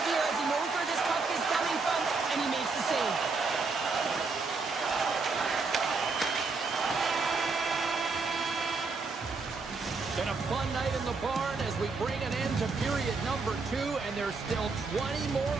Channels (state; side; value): quieter; left; 4.2 dB